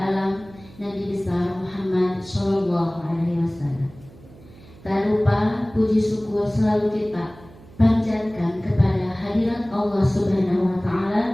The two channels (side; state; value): right; noise; hum, 22 dB below the sound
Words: Nabi besar Muhammad sallallahu alaihi wasallam. Tak lupa puji syukur selalu kita panjatkan kepada hadirat Allah Subhanahu wa